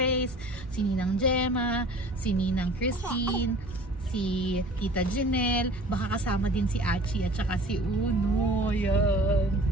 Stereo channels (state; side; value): normal; both; correlation 0.46